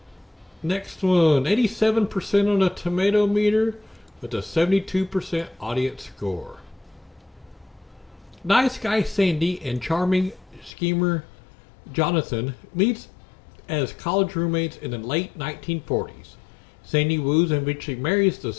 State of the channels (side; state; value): right; drops out; at 10.7 s